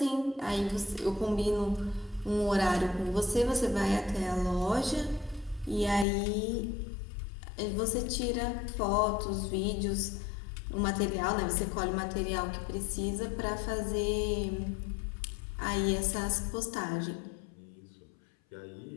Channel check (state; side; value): drops out; right; at 6.1 s